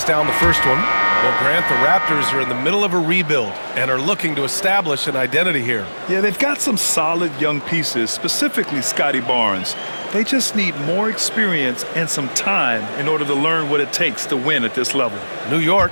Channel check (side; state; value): both; inverted; correlation -1.00